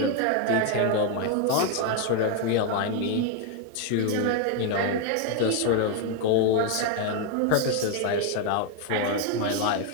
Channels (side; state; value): both; different; correlation 0.01